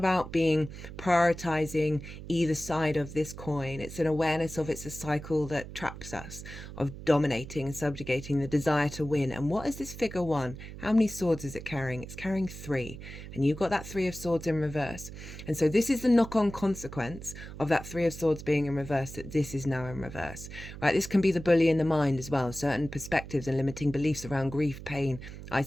being prioritizing either side of this coin. It's an awareness of it's a cycle that traps us, of dominating and subjugating, the desire to win. And what is this figure 1? How many swords is it carrying? It's carrying 3, and you've got that 3 of Swords in reverse. And so this is the knock-on consequence of that 3 of Swords being in reverse, that this is now in reverse, right? This can be the bully in the mind as well, certain perspectives and limiting beliefs around grief, pain,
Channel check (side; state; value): right; noise; hum, 12 dB below the sound